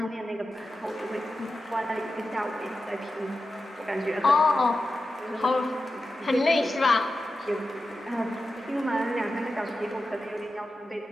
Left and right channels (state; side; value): normal; both; correlation 0.92